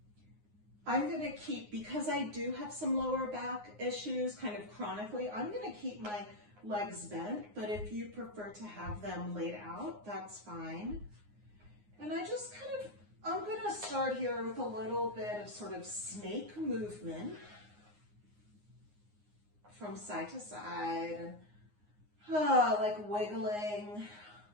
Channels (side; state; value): left; late; 9.6 ms